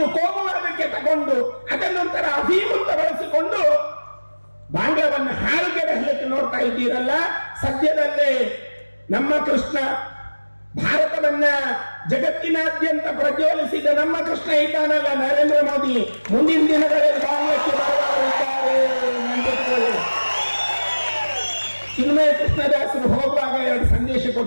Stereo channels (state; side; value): inverted; both; correlation -1.00